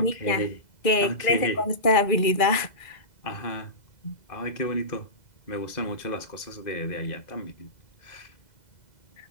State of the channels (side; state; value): right; late; 2.0 ms